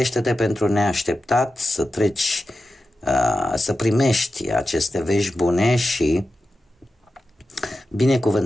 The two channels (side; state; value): both; normal; correlation 0.91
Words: pentru neașteptat, să treci, să primești aceste vești bune și